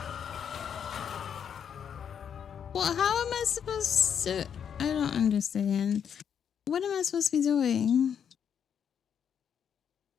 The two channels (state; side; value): quieter; right; 8.0 dB